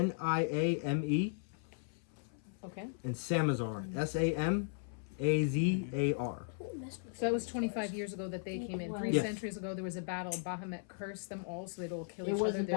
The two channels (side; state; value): right; silent; 53 dB below the other